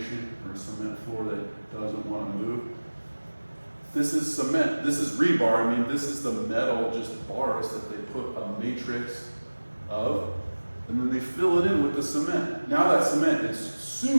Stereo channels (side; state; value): both; inverted; correlation -1.00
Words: or a cement floor that doesn't wanna move, this is cement, this is rebar, I mean, this is the metal, just bars that they put a matrix of, and then they fill it in with the cement. Now that cement is